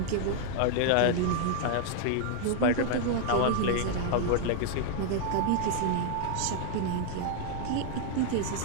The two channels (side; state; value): both; different; correlation 0.00